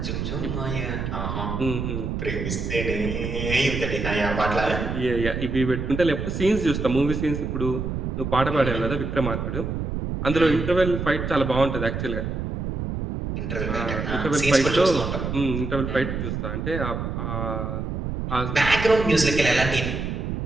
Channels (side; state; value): right; noise; rumble, 3 dB below the sound